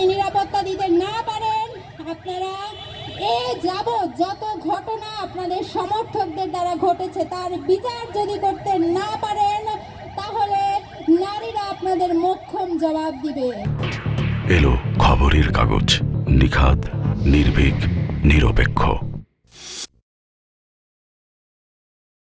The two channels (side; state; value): both; identical; correlation 1.00